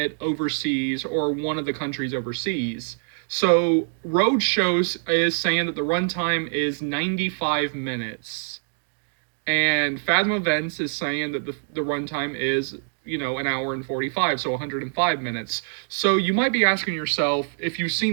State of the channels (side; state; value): left; silent; digital silence